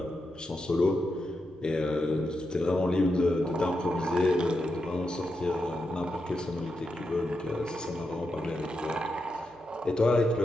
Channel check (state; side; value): noise; right; hum, 30 dB below the sound